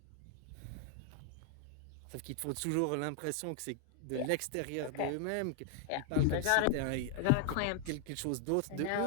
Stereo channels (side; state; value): both; different; correlation 0.00